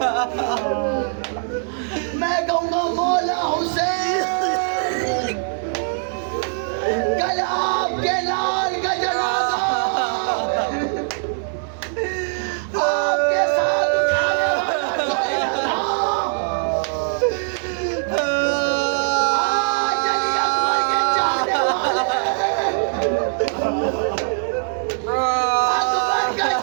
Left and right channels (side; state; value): left; silent; 56 dB below the other